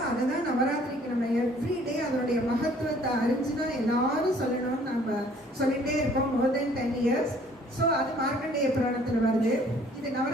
அதுதான் நவராத்திரிக்கு நம்ம எவ்ரிடே அதனுடைய மகத்துவத்தை அறிஞ்சுதான் எல்லாரும் சொல்லணும்னு நம்ம சொல்லிட்டே இருக்கோம் மோர் தென் 10 years. ஸோ அது மார்க்கண்டேய புராணத்துல வருது. இது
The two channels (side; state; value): both; normal; correlation 0.57